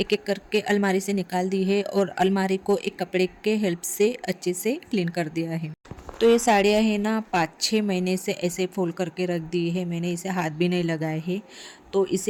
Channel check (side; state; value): both; identical; correlation 1.00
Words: एक करके अलमारी से निकाल दी है और अलमारी को एक कपड़े के हेल्प से अच्छे से क्लीन कर दिया है। तो ये साड़ियाँ है ना 5-6 महीने से ऐसे फोल्ड करके रख दी है मैंने, इसे हाथ भी नहीं लगाए है। तो